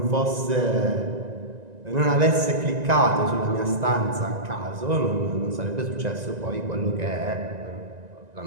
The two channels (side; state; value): left; late; 1.9 ms